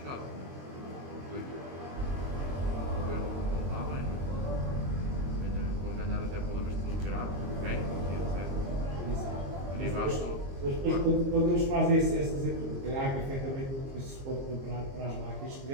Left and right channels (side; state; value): left; late; 22 ms